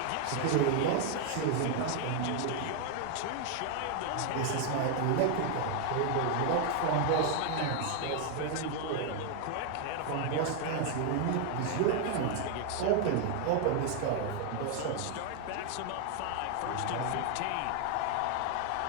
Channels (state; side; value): different; both; correlation 0.00